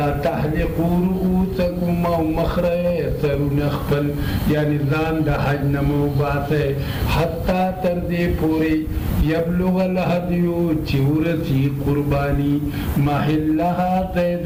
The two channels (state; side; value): identical; both; correlation 1.00